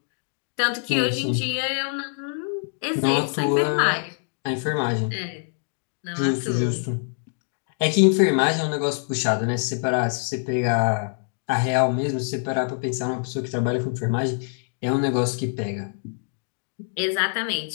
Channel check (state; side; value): silent; right; 62 dB below the other